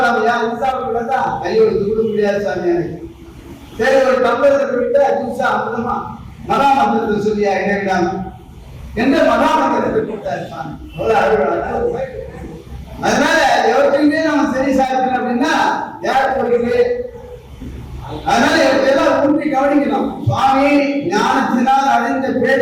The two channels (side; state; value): both; identical; correlation 1.00